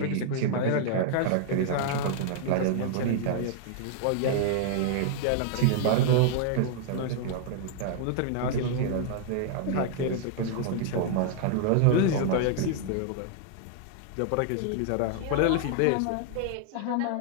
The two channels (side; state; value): both; different; correlation -0.01